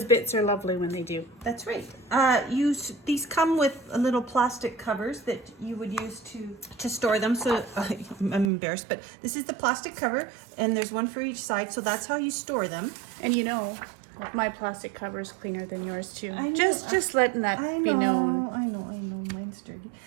bits are lovely when they do. That's right. These come with little plastic covers that you would use to store them. So I'm embarrassed, but this is the plastic cover, and there's one for each side. So that's how you store them. And you know, my plastic cover is cleaner than yours too. I know. Just letting that I be know, known. I know. Mine's dirty.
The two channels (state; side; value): drops out; left; at 8.5 s